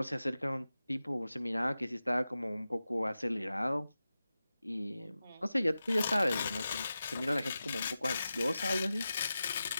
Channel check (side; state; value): both; inverted; correlation -0.93